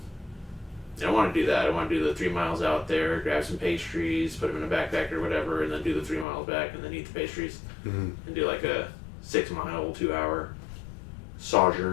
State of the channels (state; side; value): drops out; right; at 6.2 s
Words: I want to do that. I want to do the 3 miles out there, grab some pastries, put them in a backpack or whatever, and then do the 3 miles back and then eat the pastries. Mm-hmm. And do like a 6 mile, 2 hour